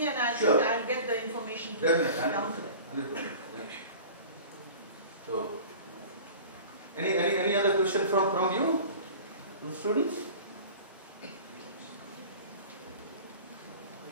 and Sure. I'll get the information to Definitely, down to them. 100%. So, any other question from you, the students?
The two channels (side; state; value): both; inverted; correlation -0.40